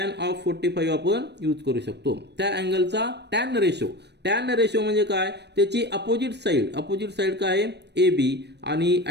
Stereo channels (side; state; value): left; late; 0.50 ms